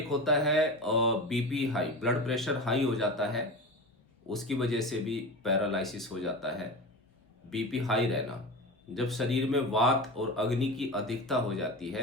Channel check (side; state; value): both; normal; correlation 0.27